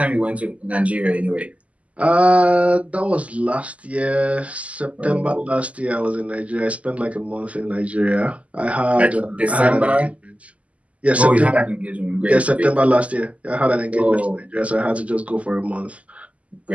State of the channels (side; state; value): left; late; 0.068 ms